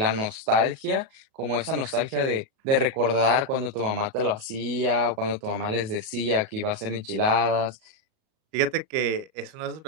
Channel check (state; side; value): late; left; 37 ms